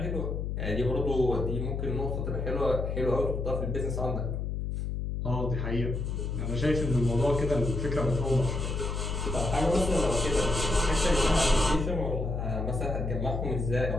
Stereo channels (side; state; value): left; noise; hum, 2 dB below the sound